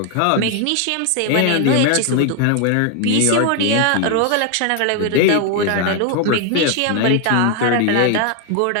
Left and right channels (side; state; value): both; different; correlation 0.00